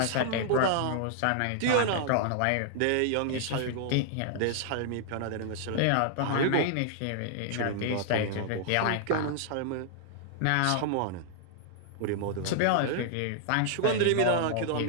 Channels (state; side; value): different; both; correlation -0.01